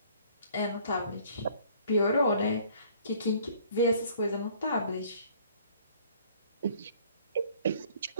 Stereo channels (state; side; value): inverted; both; correlation -0.57